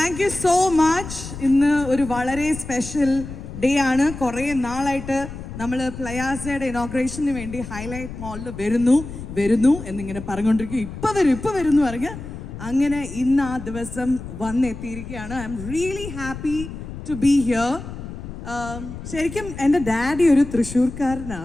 you so much. ഇന്ന് ഒരു വളരെ സ്പെഷ്യൽ ഡേ ആണ്. കുറേ നാളായിട്ട് നമ്മൾ പ്ലയാസയുടെ ഇനോഗ്രേഷന് വേണ്ടി ഹൈലൈറ്റ് മോളിൽ വരുന്നു എന്നിങ്ങനെ പറഞ്ഞുകൊണ്ടിരിക്കും. ഇപ്പം വരും എന്ന് പറഞ്ഞ് അങ്ങനെ ഇന്ന് ആ ദിവസം വന്നെത്തിയിരിക്കുകയാണ്. I'm really happy to be here. ശരിക്കും എൻ്റെ ഡാഡി ഒരു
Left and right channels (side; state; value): left; noise; rumble, 10 dB below the sound